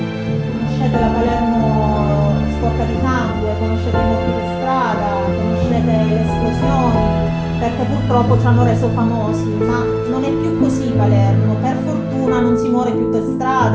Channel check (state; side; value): identical; both; correlation 1.00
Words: Conoscete la Palermo sporca di sangue, conoscete i morti per strada, conoscete le esplosioni, perché purtroppo ci hanno reso famosi, ma non è più così Palermo. Per fortuna non si muore più per